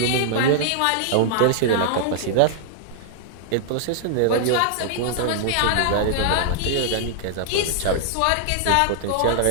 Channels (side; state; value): both; different; correlation -0.01